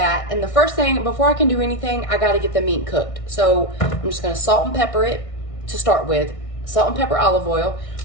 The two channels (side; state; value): right; late; 1.6 ms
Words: and the first thing, before I can do anything, I gotta get the meat cooked. So I'm just gonna salt and pepper it to start with. Salt and pepper, olive oil.